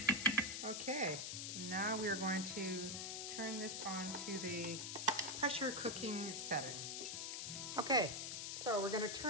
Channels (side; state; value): left; noise; hiss, 4 dB below the sound